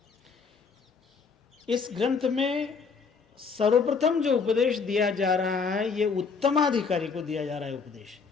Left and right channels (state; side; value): quieter; right; 5.3 dB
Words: इस ग्रंथ में सर्वप्रथम जो उपदेश दिया जा रहा है, यह उत्तमाधिकारी को दिया जा रहा है। उपदेश